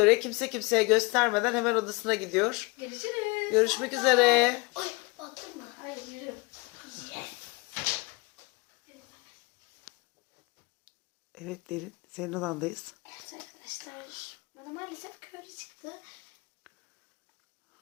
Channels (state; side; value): quieter; right; 26.8 dB